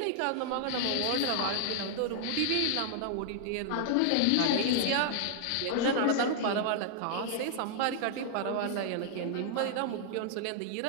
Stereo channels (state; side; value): different; both; correlation 0.00